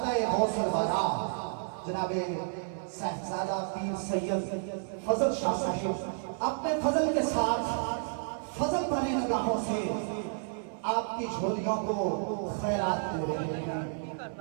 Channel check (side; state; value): left; silent; 57 dB below the other